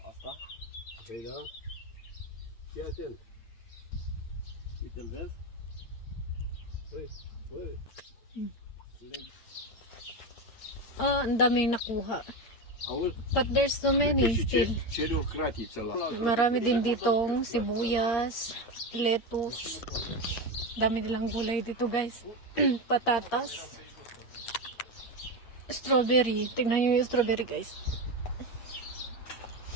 Asta? Păi da? Fii atent. Uite-l vezi? Păi, băi. Ang daming nakuha. Auzi? But there's so many still. Cere o cratiță la... Marami din ditong sibuyas, lettuce. Dami nilang gulay dito guys. Patatas. Strawberry. Tingnan nyo yung strawberry guys.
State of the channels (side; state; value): right; late; 8.6 ms